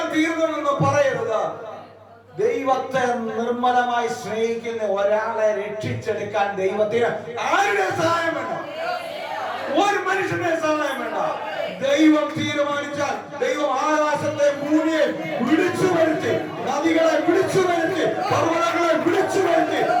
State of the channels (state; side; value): identical; both; correlation 1.00